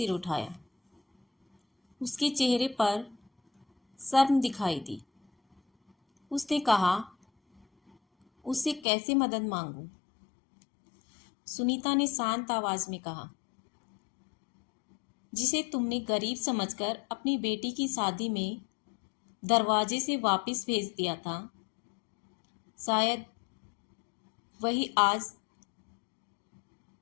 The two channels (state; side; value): drops out; right; at 8.8 s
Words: उठाया। उसके चेहरे पर शर्म दिखाई दी। उसने कहा, उससे कैसे मदद मांगूं? सुनीता ने शांत आवाज में कहा, जिसे तुमने गरीब समझकर अपनी बेटी की शादी में दरवाजे से वापस भेज दिया था, शायद वही आज